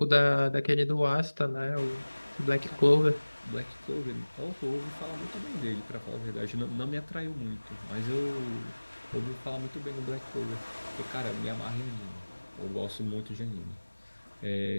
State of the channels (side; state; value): both; inverted; correlation -1.00